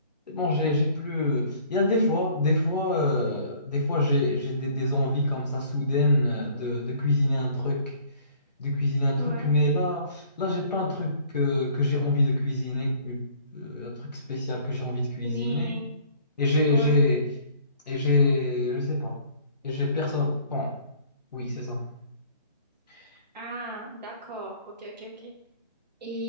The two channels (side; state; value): both; inverted; correlation -0.55